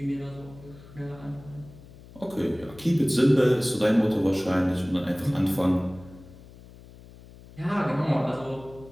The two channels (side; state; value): left; noise; hum, 20 dB below the sound